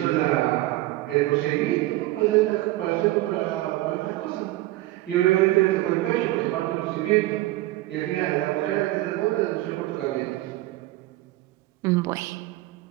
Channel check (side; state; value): left; quieter; 17.4 dB